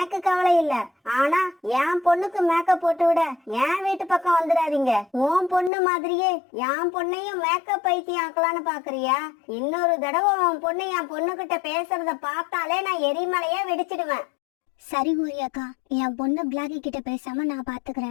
கவலை இல்ல. ஆனா என் பொண்ணுக்கு மேக்கப் போட்டு விட என் வீட்டு பக்கம் வந்துடாதீங்க. உன் பொண்ணு மாதிரியே என் பொண்ணையும் மேக்கப் பைத்தியம் ஆக்கலான்னு பாக்குறியா? இன்னொரு தடவை உன் பொண்ணு என் பொண்ணு கிட்ட பேசுறத பார்த்தாலே நான் எரிமலையா வெடிச்சிடுவேன். சரி கோரியக்கா, என் பொண்ணு பிளாக்கி கிட்ட பேசாம நான்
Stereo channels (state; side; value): drops out; right; at 5.7 s